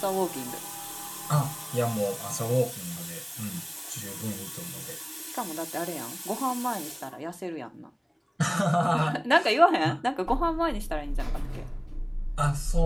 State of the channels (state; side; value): identical; both; correlation 1.00